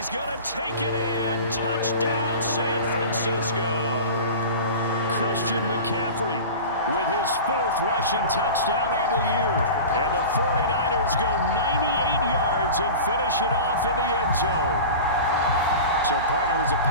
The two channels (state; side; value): inverted; both; correlation -0.34